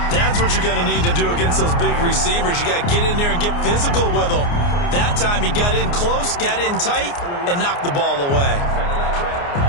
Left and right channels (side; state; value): right; late; 29 ms